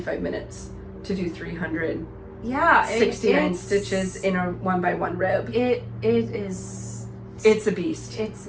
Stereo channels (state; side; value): identical; both; correlation 1.00